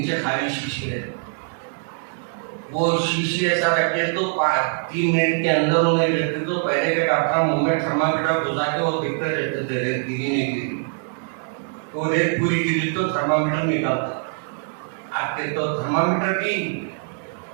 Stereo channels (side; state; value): left; silent; 63 dB below the other